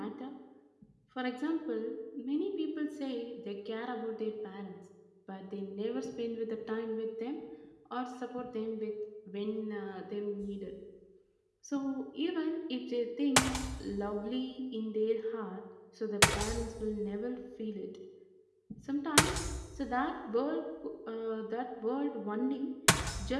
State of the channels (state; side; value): identical; both; correlation 1.00